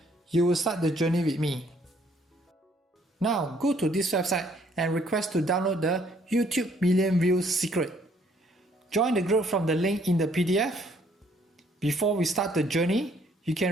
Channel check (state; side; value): normal; both; correlation 0.65